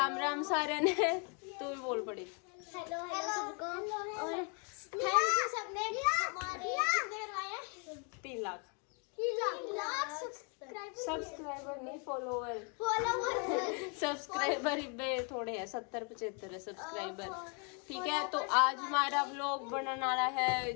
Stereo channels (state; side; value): quieter; right; 35.4 dB